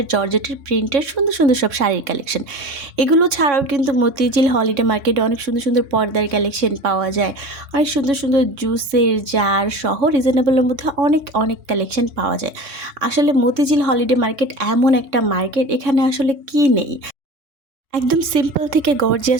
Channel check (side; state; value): left; late; 3.6 ms